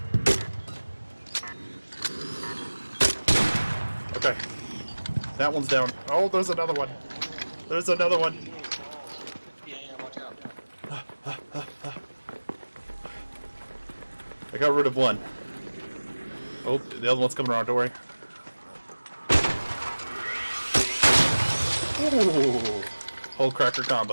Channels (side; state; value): both; inverted; correlation -1.00